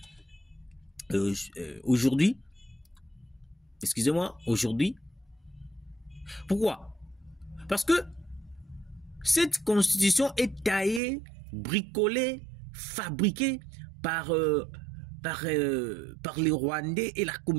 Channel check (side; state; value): left; drops out; at 11.0 s